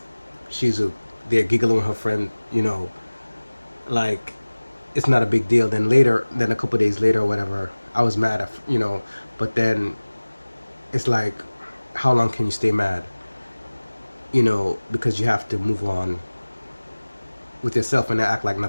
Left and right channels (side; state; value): both; inverted; correlation -1.00